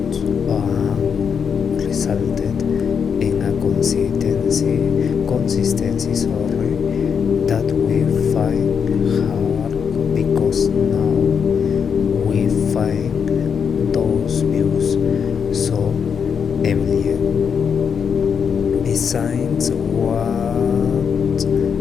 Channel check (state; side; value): quieter; right; 6.8 dB